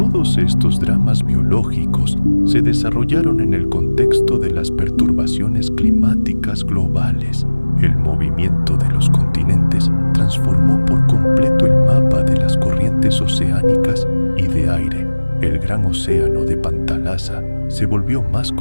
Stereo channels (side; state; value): both; inverted; correlation -1.00